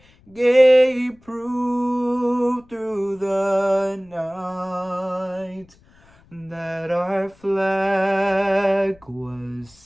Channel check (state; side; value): noise; left; rumble, 30 dB below the sound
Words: gave proof through the night that our flag was